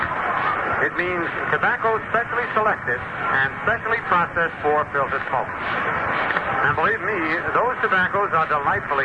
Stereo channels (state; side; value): identical; both; correlation 1.00